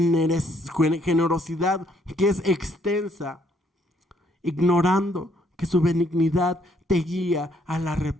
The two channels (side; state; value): both; normal; correlation 0.68